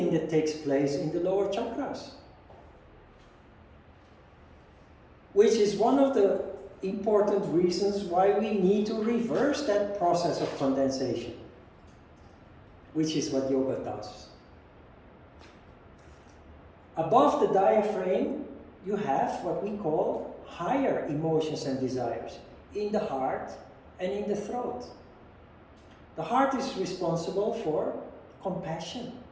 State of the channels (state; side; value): identical; both; correlation 1.00